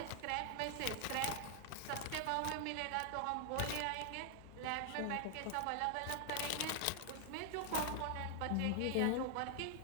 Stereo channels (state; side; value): different; both; correlation 0.00